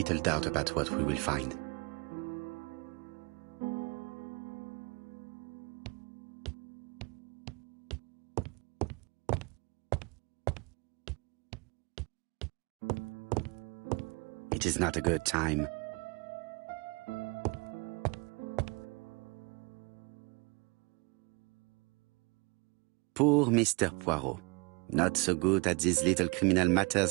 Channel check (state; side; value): quieter; left; 28.8 dB